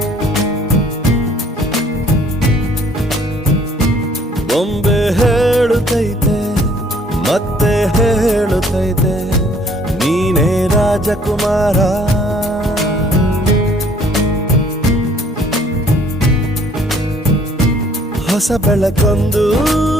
ಬೊಂಬೆ ಹೇಳುತ್ತೈತೆ ಮತ್ತೆ ಹೇಳುತ್ತೈತೆ ನೀನೇ ರಾಜಕುಮಾರ. ಹೊಸ ಬೆಳಕೊಂದು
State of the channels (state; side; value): normal; both; correlation 0.59